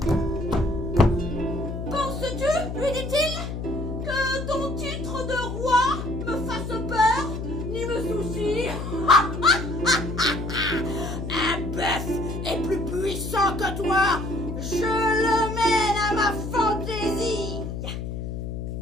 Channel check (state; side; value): noise; left; hum, 5 dB below the sound